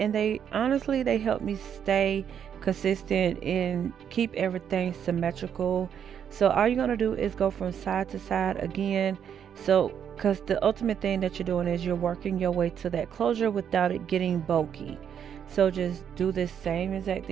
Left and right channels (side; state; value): left; quieter; 8.5 dB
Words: they honestly they help me stay consistent and keep everything symmetrical. So all you're going to do is go from side to side again. So because the ultimate thing that you're doing is you're working your way to that closure without it getting bulky. So just do this same exact